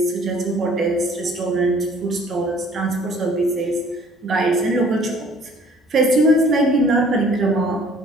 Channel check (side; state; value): both; normal; correlation 0.55